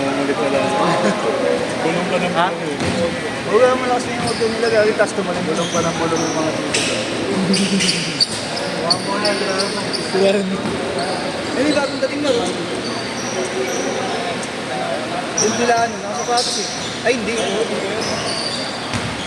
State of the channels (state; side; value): identical; both; correlation 1.00